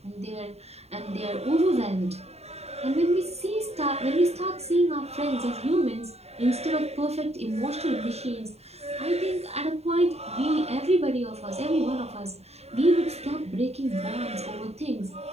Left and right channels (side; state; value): left; late; 0.30 ms